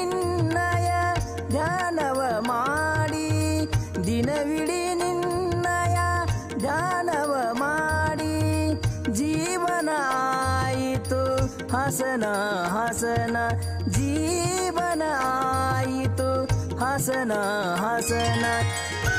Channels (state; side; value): identical; both; correlation 1.00